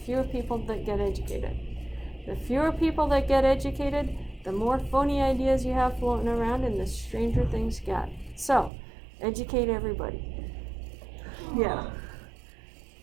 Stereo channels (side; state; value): left; drops out; at 8.7 s